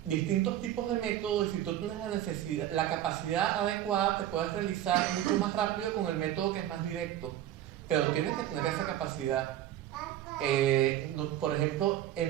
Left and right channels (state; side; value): quieter; left; 12.4 dB